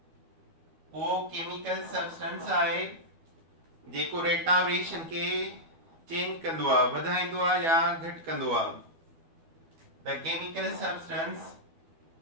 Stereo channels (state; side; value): late; left; 12 ms